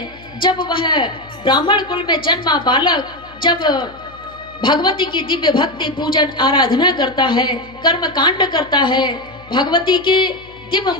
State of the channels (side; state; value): left; noise; hum, 23 dB below the sound